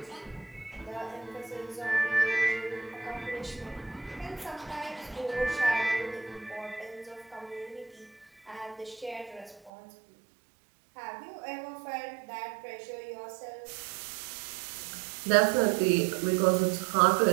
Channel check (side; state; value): left; drops out; at 9.7 s